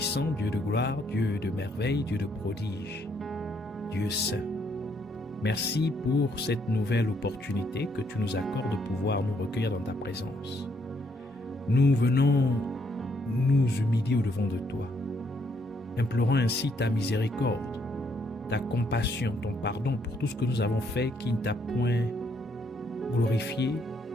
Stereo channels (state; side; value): normal; both; correlation 0.71